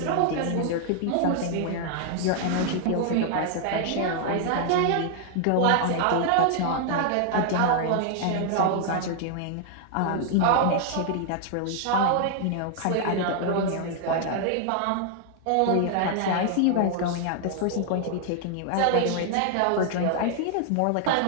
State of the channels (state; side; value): different; both; correlation 0.00